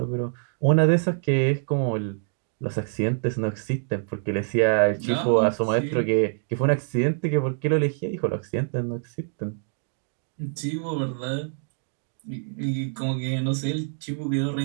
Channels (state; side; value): silent; left; digital silence